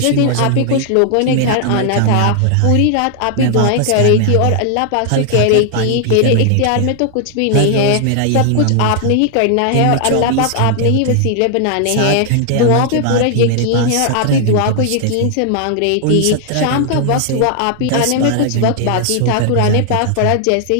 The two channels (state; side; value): different; both; correlation 0.00